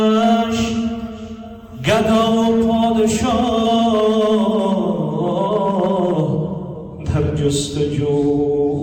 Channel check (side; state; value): both; identical; correlation 1.00